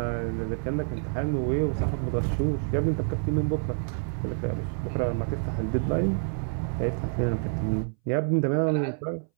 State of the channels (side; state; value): left; silent; 60 dB below the other